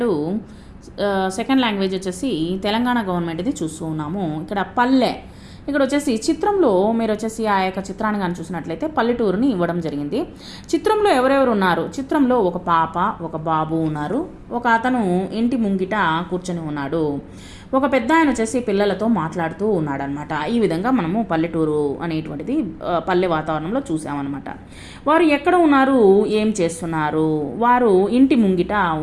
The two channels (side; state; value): both; identical; correlation 1.00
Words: second language వచ్చేసి తెలంగాణ గవర్నమెంట్ది చూస్తూ ఉన్నాము. ఇక్కడ పల్లె, ఇక్కడ వచ్చేసి చిత్రంలో మీరు వచ్చేసి ఆ యొక్క చిత్రాన్ని కానీ చూసినట్లయితే పల్లెటూరుని ఇవ్వడం జరిగింది. చిత్రంలో ఎవరెవరు ఉన్నారు? చిత్రంలో ఒక పాప, ఒక బాబు ఉన్నారు. ఒక అతను ఇంటి ముంగిట కూర్చొని ఉన్నాడు. ఒక పెద్ద ఆయన వచ్చేసి పిల్లలతో మాట్లాడుతూ ఉన్నాడనమాట. ఈ విధంగా మనము పల్లెటూరు అనేటువంటిది పల్లె వాతావరణంలో చూసామన్నమాట. వారు ఎక్కడ ఉన్నారు, ఏం చేస్తున్నారు? వారు ఇంటి ముంగిట